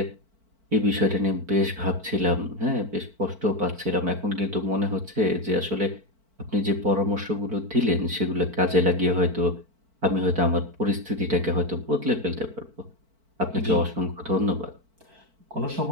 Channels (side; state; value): left; late; 4.5 ms